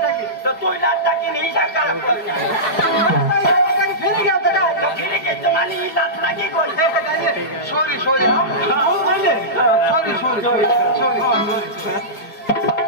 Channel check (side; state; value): right; late; 4.8 ms